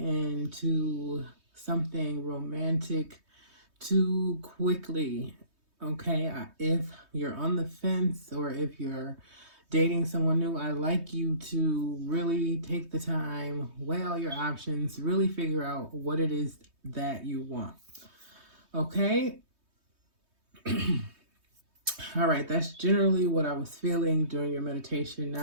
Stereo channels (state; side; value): late; left; 3.2 ms